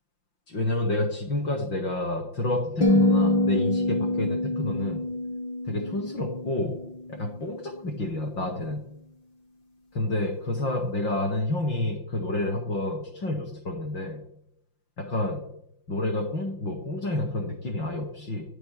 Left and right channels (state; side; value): late; right; 5.8 ms